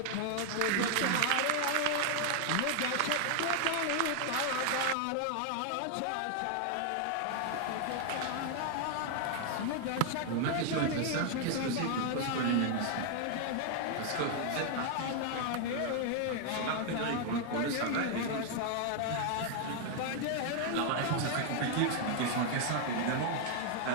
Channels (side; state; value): both; different; correlation 0.00